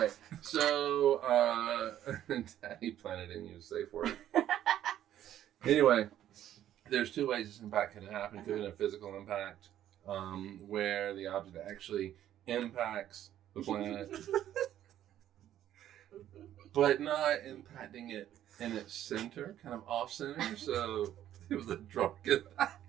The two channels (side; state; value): left; quieter; 11.7 dB